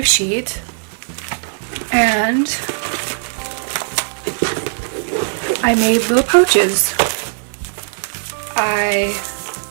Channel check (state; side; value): silent; left; digital silence